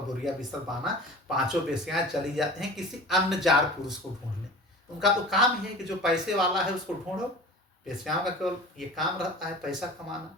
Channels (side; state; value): both; normal; correlation 0.38